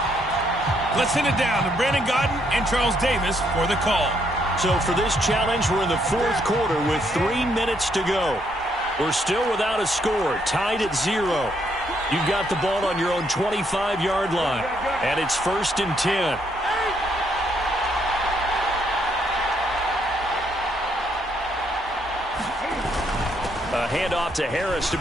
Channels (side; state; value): both; normal; correlation 0.73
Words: Let's send it down to Brandon Gaudin and Charles Davis for the call. So for this challenge, we're in the fourth quarter with 3 minutes to go. We're still without a score, tied at 0. You've got the ball on your own 25-yard line, and it's 1st and 10. A handoff to Harris to